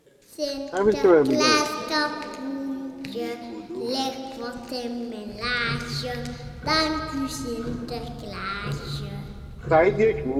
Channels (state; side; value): identical; both; correlation 1.00